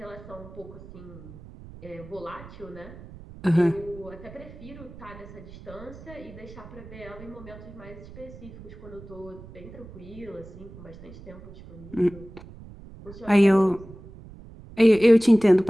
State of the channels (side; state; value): right; noise; rumble, 17 dB below the sound